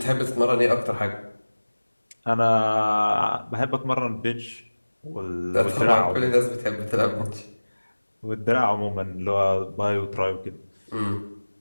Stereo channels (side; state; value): both; inverted; correlation -1.00